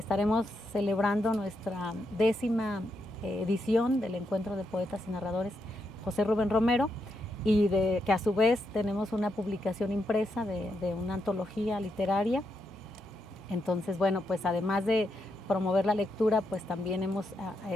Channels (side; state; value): both; normal; correlation 0.81